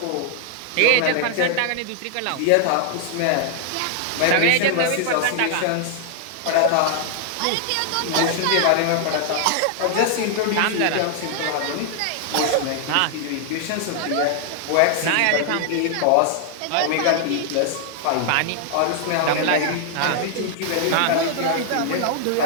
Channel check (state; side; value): different; both; correlation 0.00